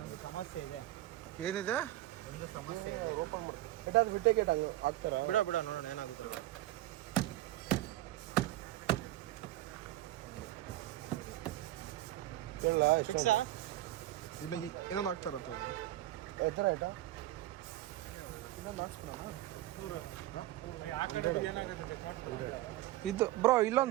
ಸಮಸ್ಯೆ ಇದೆ. ಏನಿದೆ? ಒಂದು ಸಮಸ್ಯೆ ಇದೆ. ಓಪನ್ ಮಾಡಿ ಅದು ಬಿಟ್ಟೆ ಗೇಟ್ ಆಗ್ತಾರ. ಬಿಡ ನೋಡೋಣ ಏನಾಗುತ್ತೆ. ಹೇಳ ಎಷ್ಟು ಇಲ್ಲ ಇನ್ನೊಂದು ಹಾಕ್ತಾರತ್ತೆ. ಎತ್ತರ ಆಯ್ತಾ? ಇನ್ನೊಂದು ಹಾಕ್ಸ್ಬಿಡೋಣ. ಇದು ಬ್ರೋ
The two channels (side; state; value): left; quieter; 15.3 dB